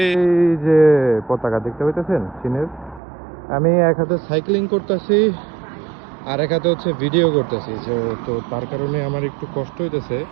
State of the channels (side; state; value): left; drops out; at 3.0 s